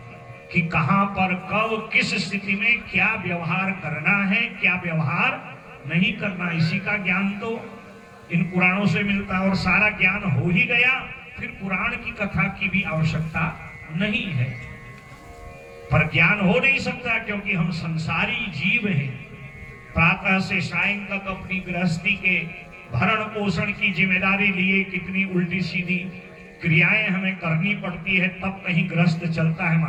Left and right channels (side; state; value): both; identical; correlation 1.00